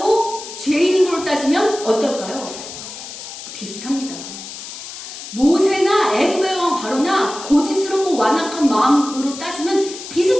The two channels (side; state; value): left; noise; hiss, 11 dB below the sound